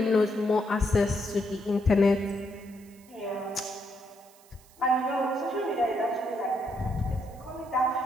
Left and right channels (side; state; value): right; noise; hiss, 26 dB below the sound